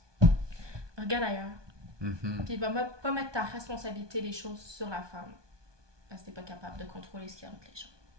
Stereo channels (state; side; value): late; left; 1.2 ms